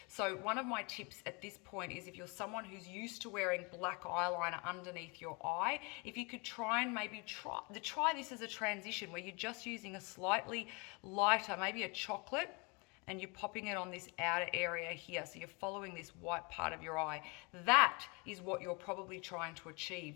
So one of my tips at this point is, if you're someone who's used to wearing black eyeliner underneath your eye, if you could try and maybe try this as a transition where you're just using a slightly lighter, maybe a chocolate, and you're popping it on this outer area here. So you're following this white part of your eye. That is what you're probably trying to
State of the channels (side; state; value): right; quieter; 30.3 dB